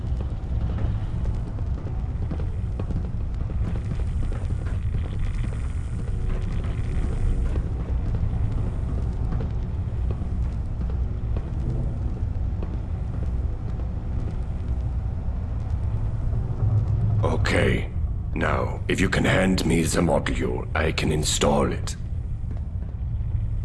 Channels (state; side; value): identical; both; correlation 1.00